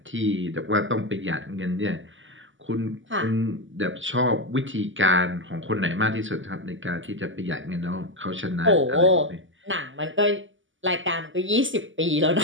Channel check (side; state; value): left; late; 0.56 ms